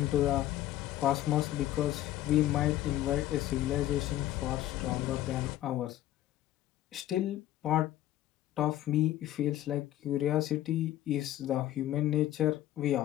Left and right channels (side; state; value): right; quieter; 13.6 dB